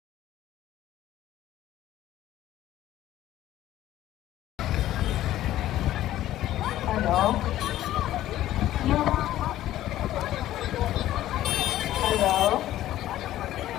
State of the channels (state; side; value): quieter; right; 13.8 dB